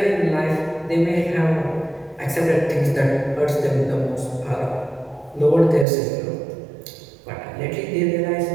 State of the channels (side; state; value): left; drops out; at 5.9 s